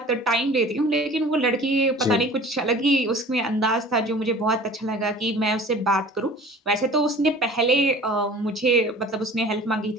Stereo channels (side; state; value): both; normal; correlation 0.44